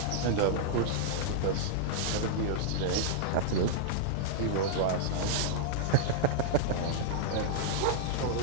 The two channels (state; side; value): different; both; correlation -0.01